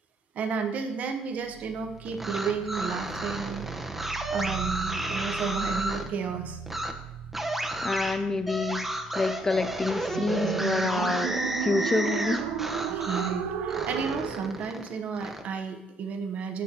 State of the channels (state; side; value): normal; both; correlation 0.71